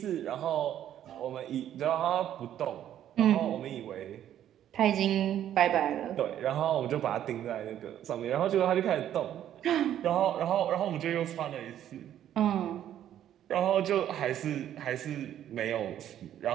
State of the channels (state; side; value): quieter; left; 11.0 dB